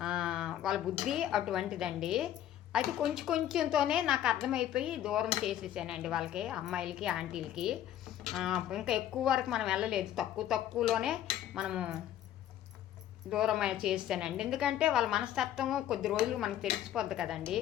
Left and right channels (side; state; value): right; quieter; 11.5 dB